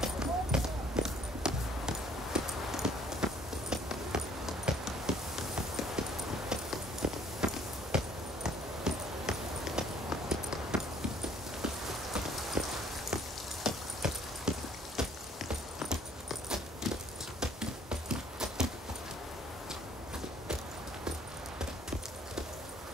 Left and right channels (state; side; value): normal; both; correlation 0.59